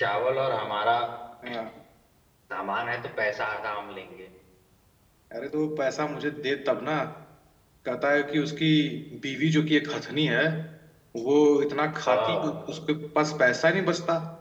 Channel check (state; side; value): identical; both; correlation 1.00